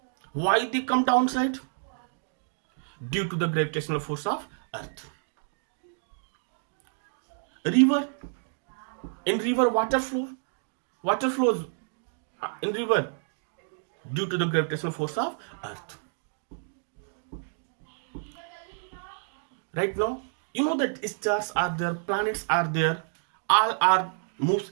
Why they come downside? Due to the gravitational force of earth. River, in river water flows in river due to the gravitational force of earth. Right now, you know that stars are there, planets are there, all are moves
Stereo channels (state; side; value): silent; left; digital silence